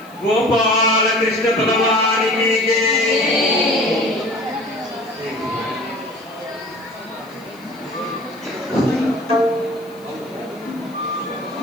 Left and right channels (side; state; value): left; noise; hiss, 28 dB below the sound